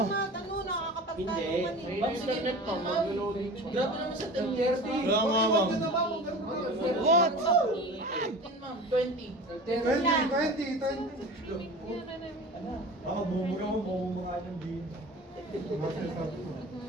nakakapagtanungan eh. Ma'am, sige, ma'am. Grabe naman sa 10:30. Kaya nga, ma'am. What? 15, ma'am. 20. 20. Baka bumuga mo, bumuga ng din.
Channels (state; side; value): normal; both; correlation 0.37